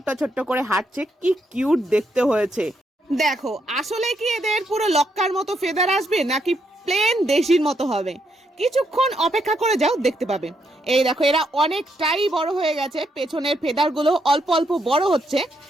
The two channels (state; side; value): normal; both; correlation 0.77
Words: ছোট্ট করে হাঁটছে, কি কিউট দেখতে হয়েছে। দেখো, আসলে কি এদের পুরো লক্কার মতো ফেদার আসবে নাকি প্লেন দেশির মতো হবে? কিছুক্ষণ অপেক্ষা করে যাও, দেখতে পাবে। এই দেখো, এরা অনেকটাই বড় হয়ে গেছে। পেছনের ফেদার গুলো অল্প অল্প বড় হচ্ছে,